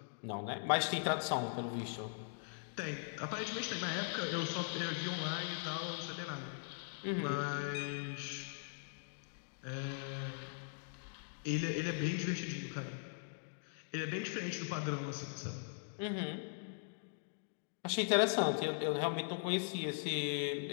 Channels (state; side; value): silent; right; digital silence